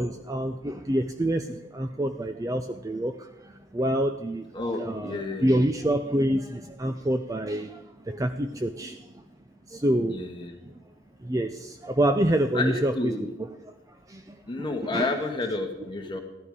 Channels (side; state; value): both; normal; correlation 0.75